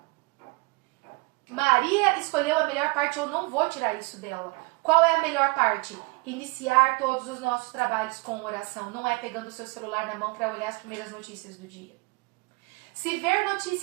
Maria escolheu a melhor parte, eu não vou tirar isso dela. Qual é a melhor parte? Iniciar todos os nossos trabalhos com oração. Não é pegando o seu celular na mão para olhar as primeiras notícias do dia. Se ver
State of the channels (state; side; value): quieter; left; 26.7 dB